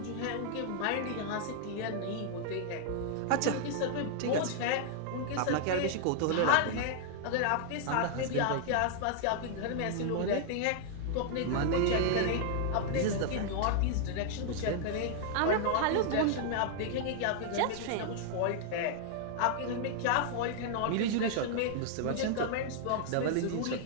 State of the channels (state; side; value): different; both; correlation -0.01